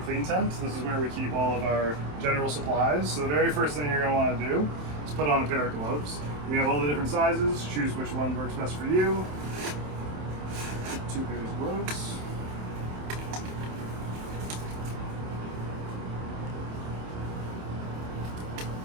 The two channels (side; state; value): left; late; 27 ms